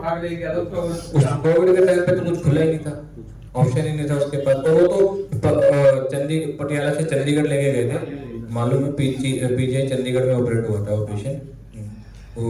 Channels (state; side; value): identical; both; correlation 1.00